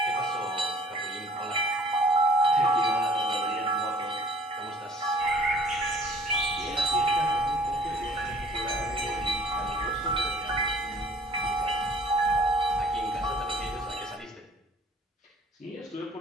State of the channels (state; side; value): normal; both; correlation 0.53